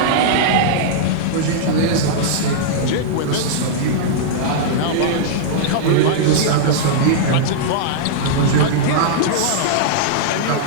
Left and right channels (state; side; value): different; both; correlation -0.02